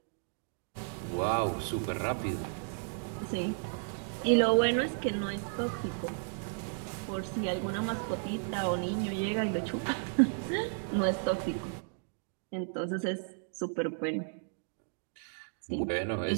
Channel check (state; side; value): silent; left; digital silence